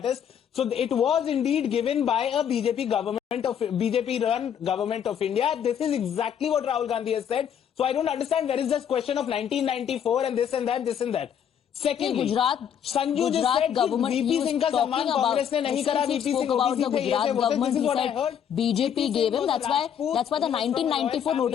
So it was indeed given by a BJP-run government of India. This is exactly what Rahul Gandhi has said. So I don't understand where is this question of 1994 and this and that, this and that. Secondly, Sanju just said VP Singh का सम्मान कांग्रेस ने नहीं करा. VP Singh about the OBC थे, ये Gujarat थे, government. this is He what I said heard. BJP gave him. That's why the 1994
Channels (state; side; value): quieter; right; 8.6 dB